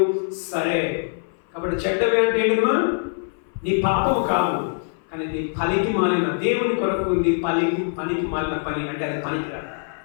సరే. కాబట్టి చెడ్డవి అంటే ఏంటమ్మా? నీ పాపము కాదు, కానీ నీ పనికి మాలిన దేవుని కొరకు నీ పనికి మాలిన పని అంటే అది పనికిరాదు.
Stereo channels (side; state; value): right; silent; 58 dB below the other